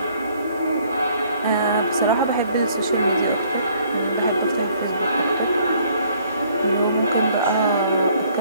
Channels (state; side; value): inverted; both; correlation -0.62